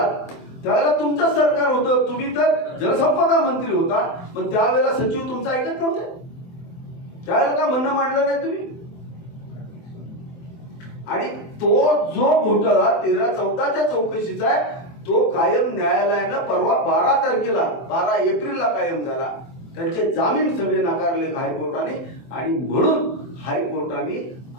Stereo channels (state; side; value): late; right; 23 ms